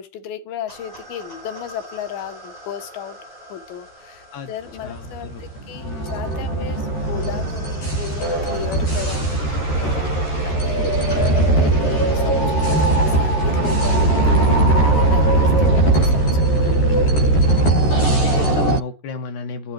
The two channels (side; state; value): right; late; 13 ms